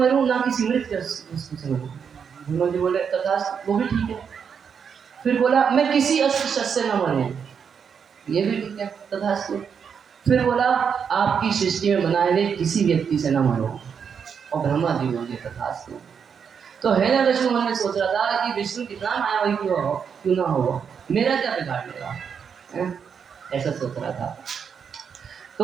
ना किसी मृत वस्तु से मरूं। ब्रह्मा जी बोले तथास्तु, वो भी ठीक है। फिर बोला मैं किसी अस्त्र शस्त्र से न मरूं। ये भी ठीक है, तथास्तु। फिर बोला आपकी सृष्टि में बनाए गए किसी व्यक्ति से न मरो। और ब्रह्मा जी बोले तथास्तु। तो हिरण्यकशिपु मन में सोच रहा था कि विष्णु कितना मायावी क्यों ना हो, मेरा क्या बिगाड़ लेगा, ऐसा सोच रहा था।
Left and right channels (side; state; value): left; quieter; 6.9 dB